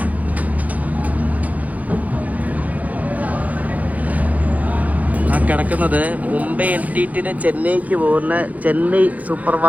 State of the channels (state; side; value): late; left; 0.075 ms